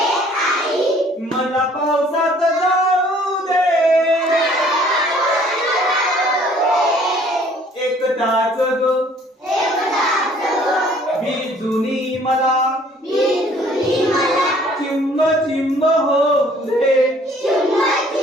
मला पावसात जाऊ दे, एक तास ग भिजुनी मला चिंब चिंब होऊ दे,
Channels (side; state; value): both; normal; correlation 0.57